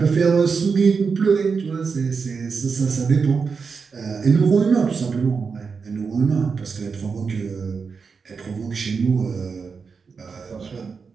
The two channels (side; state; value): left; quieter; 5.3 dB